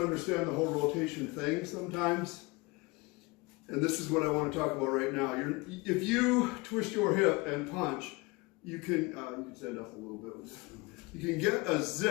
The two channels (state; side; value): quieter; right; 24.8 dB